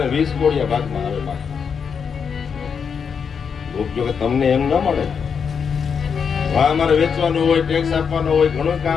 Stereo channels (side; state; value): right; quieter; 6.5 dB